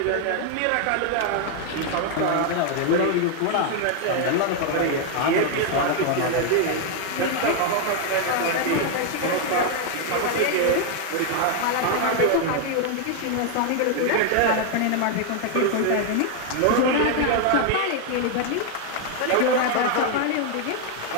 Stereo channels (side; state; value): both; different; correlation 0.00